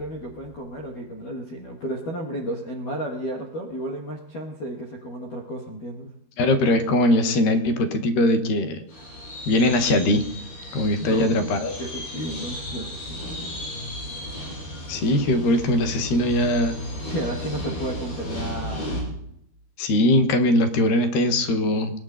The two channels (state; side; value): late; right; 12 ms